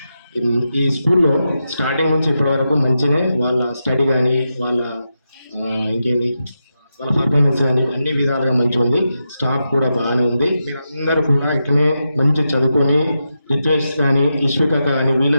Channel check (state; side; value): inverted; both; correlation -0.88